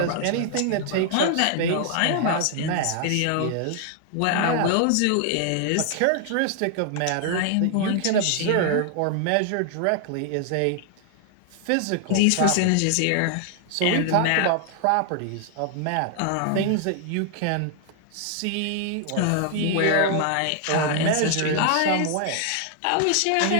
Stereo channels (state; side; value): different; both; correlation 0.00